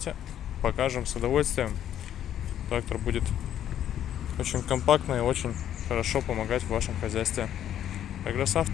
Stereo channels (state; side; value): quieter; right; 10.7 dB